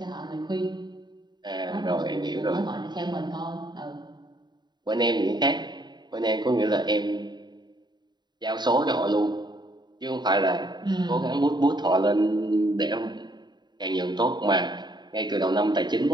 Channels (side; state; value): left; late; 0.21 ms